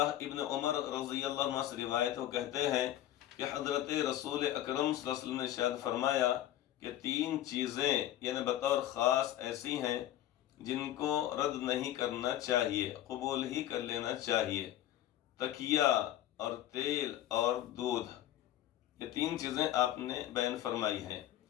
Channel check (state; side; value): quieter; right; 12.9 dB